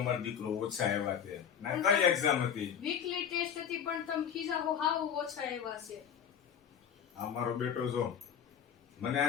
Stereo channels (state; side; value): quieter; right; 8.2 dB